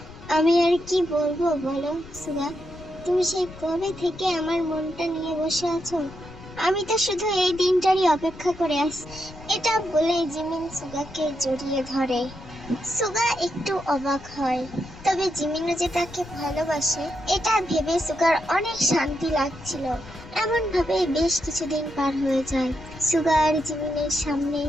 আমি আর কি বলবো বলো সুগা, তুমি সেই কবে থেকে আমার মনটা নিয়ে বসে আছো, আমি তো শুধু এই দিনটারই অপেক্ষা করে আছি। এটা বলে জিমিন সুগাকে জড়িয়ে ধরে। সুগা একটু অবাক হয়, তবে জিমিনও যে তাকে ভালোবাসে এটা ভেবে সুগার অনেক শান্তি লাগছিল। এমন ভাবে বেশ কিছুদিন পার হয়ে যায়। সুগা আর জিমিনের সামনে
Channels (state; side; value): noise; left; rumble, 17 dB below the sound